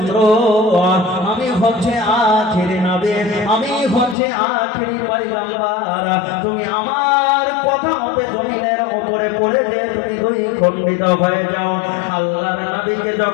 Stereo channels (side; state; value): right; drops out; at 4.2 s